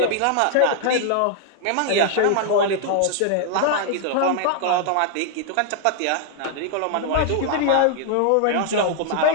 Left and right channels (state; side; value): different; both; correlation 0.00